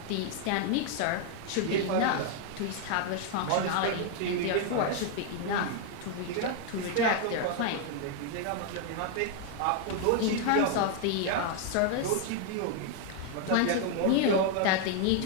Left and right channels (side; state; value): both; different; correlation 0.00